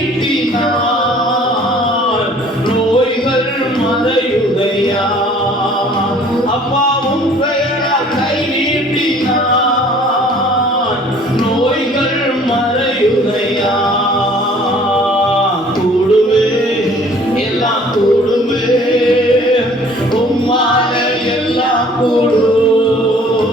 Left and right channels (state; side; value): normal; both; correlation 0.53